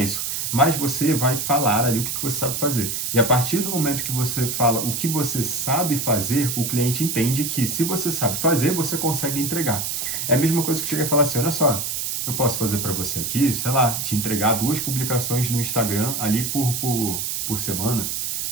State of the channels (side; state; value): right; noise; hiss, 2 dB below the sound